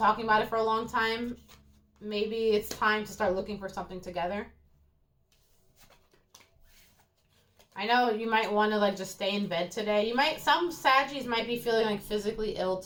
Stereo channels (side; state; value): both; identical; correlation 1.00